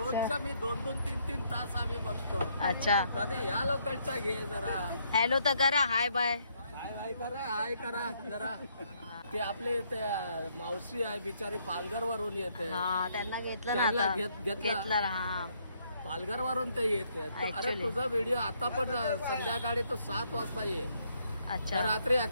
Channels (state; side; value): inverted; both; correlation -0.71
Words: मी 2-2, 3-3 तास आम्ही बघतो. अच्छा, कधी या लोकांचा घे जरा. हॅलो तर करा, हाय बाय. हाय करा जरा. ते आपले ते मावशी आहे बिचारी, पालघर वरून येते. हा, त्यांना घेतलं ना त्यांना आता. घेतलं. हा, पालघर वरून ते येते. अरे Actually. तुझा व्हिडिओ आता पण संध्याकाळी तो 7 वाजता ये. अच्छा. रात्री